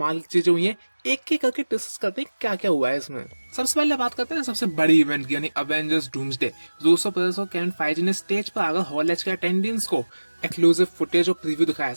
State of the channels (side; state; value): both; inverted; correlation -1.00